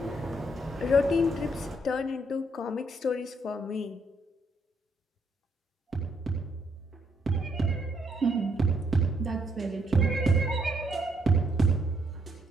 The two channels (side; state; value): both; normal; correlation 0.73